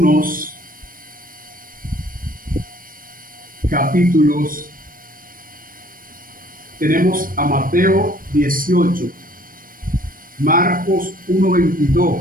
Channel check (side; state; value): left; late; 0.41 ms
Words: capítulos. Tenemos a Mateo 18, Marcos